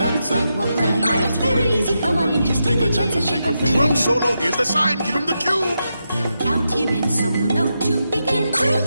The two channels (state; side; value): inverted; both; correlation -0.86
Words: and we'll play. Now it's very easy. Come on and just take a chance and shake a thing. Drum solo. Here's the sign. Give him the cue. Count him in so he'll know to begin to